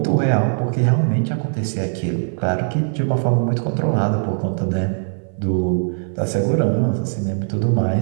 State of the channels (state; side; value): silent; left; 57 dB below the other